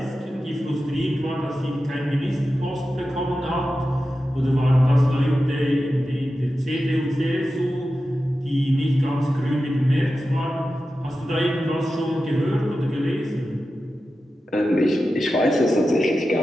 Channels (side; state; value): both; normal; correlation 0.92